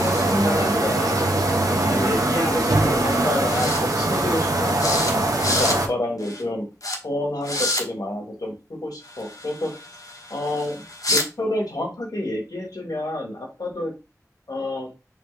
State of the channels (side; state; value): both; normal; correlation 0.66